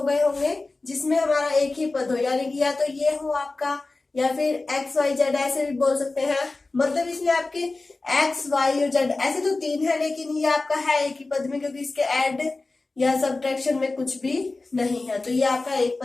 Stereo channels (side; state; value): right; quieter; 3.4 dB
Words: गए होंगे। जिसमें हमारा एक ही पद हो, यानी कि या तो ये हो आपका, या फिर एक्स वाई जेड ऐसे भी बोल सकते हैं। मतलब इसमें आपके एक्स वाई और जेड ऐसे तो 3 है, लेकिन ये आपका है एक ही पद में, क्योंकि इसके ऐड या सब्ट्रैक्शन में कुछ भी नहीं है, तो ये आपका एक